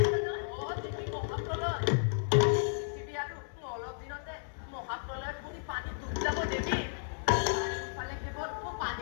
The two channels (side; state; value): right; silent; 56 dB below the other